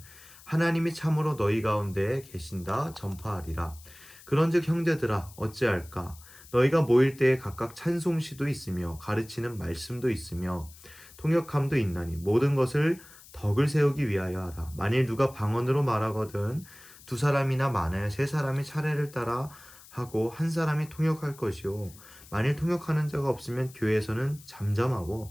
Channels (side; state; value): left; noise; hiss, 21 dB below the sound